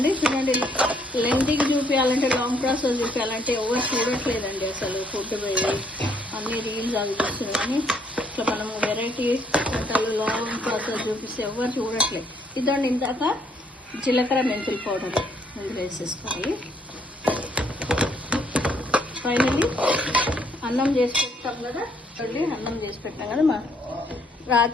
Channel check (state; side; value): normal; both; correlation 0.68